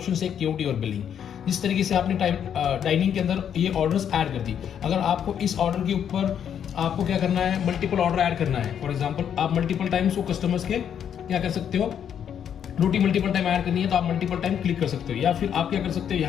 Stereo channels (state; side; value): quieter; right; 8.8 dB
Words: है, केओटी और बिलिंग। जिस तरीके से आपने डाइनिंग के अंदर ये ऑर्डर्स ऐड कर दी, अगर आपको इस ऑर्डर के ऊपर आपको क्या करना है, मल्टीपल ऑर्डर ऐड करना है। फॉर एग्जांपल आप मल्टीपल टाइम्स वो कस्टमर्स के क्या कर सकते हो, रोटी मल्टीपल टाइम ऐड करनी है तो आप मल्टीपल टाइम क्लिक कर सकते हो, या फिर आप क्या कर सकते हो,